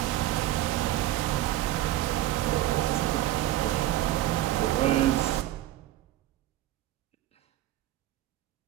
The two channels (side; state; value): left; quieter; 14.3 dB